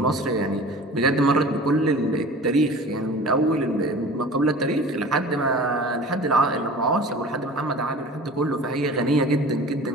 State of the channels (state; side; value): normal; both; correlation 0.40